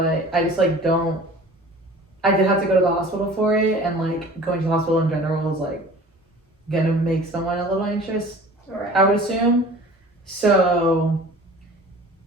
I just like don't. I did have to go to the hospital for it, and like going to the hospital in general is like gonna make someone a little anxious. Right. I would assume. So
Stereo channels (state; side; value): normal; both; correlation 0.44